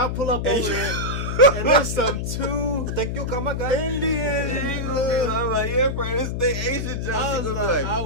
pull up over there. And there's some two thank you, come on, guys. Indian. I'm like, yeah, friend, this they Asian Jones. I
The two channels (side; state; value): left; noise; hum, 2 dB below the sound